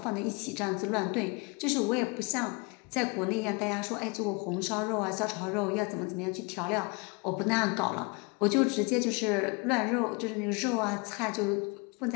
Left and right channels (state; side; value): quieter; right; 30.4 dB